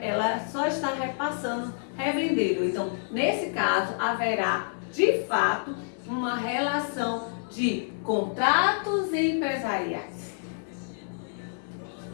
só está repassando, revendendo. Então, nesse caso, haverá, de fato, uma relação de contratos empresariais.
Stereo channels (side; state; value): right; silent; 59 dB below the other